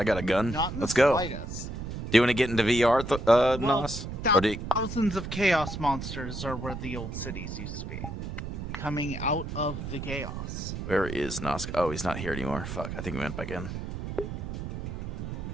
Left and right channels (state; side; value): noise; right; rumble, 6 dB below the sound